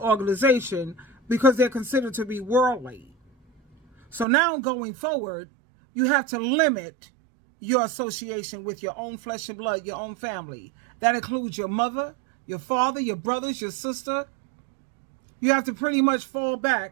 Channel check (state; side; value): drops out; left; at 4.2 s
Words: because they're considered to be worldly. So now going forward, you have to limit your association with your own flesh and blood, your own family. That includes your mother, your father, your brothers, your sister. You have to pretty much fall